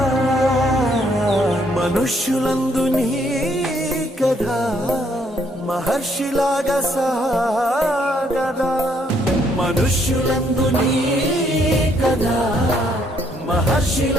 మనుష్యులందు నీ కథ మహర్షిలాగా సాగదా, మనుష్యులందు నీ కథ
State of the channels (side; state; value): both; normal; correlation 0.70